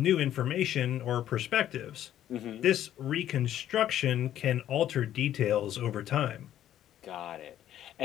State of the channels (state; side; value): quieter; right; 11.7 dB